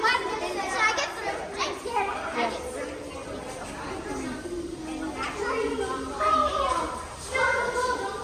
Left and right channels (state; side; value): identical; both; correlation 1.00